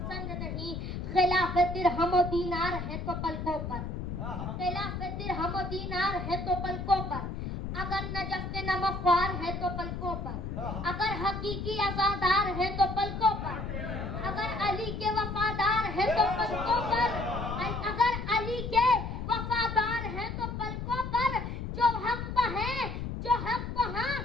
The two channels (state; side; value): noise; left; rumble, 5 dB below the sound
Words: नहीं। खिलाफ दिरहम और दीनार है तो पलकों पर, खिलाफ दिरहम और दीनार है तो पलकों पर। अगर नजफ के नमख्वार है तो पलकों पर, अगर हकीकी आजादार है तो पलकों पर, अगर अली के वफादार है तो पलकों पर, अगर अली के वफादार है तो पलकों पर। जो हक पर है, जो हक पर हाँ,